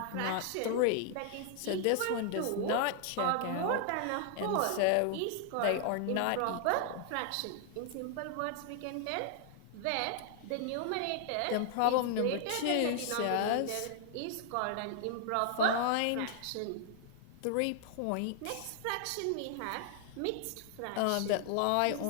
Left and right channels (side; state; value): both; different; correlation 0.00